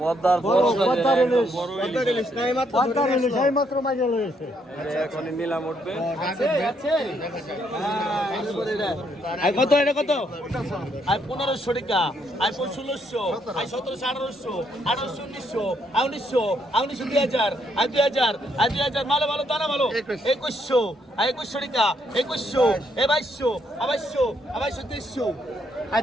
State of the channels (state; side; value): normal; both; correlation 0.73